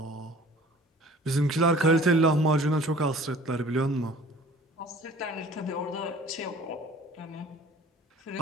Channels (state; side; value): normal; both; correlation 0.48